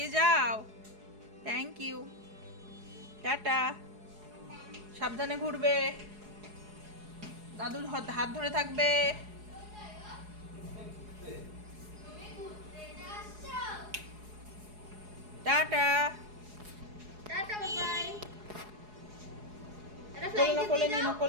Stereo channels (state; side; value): late; left; 4.8 ms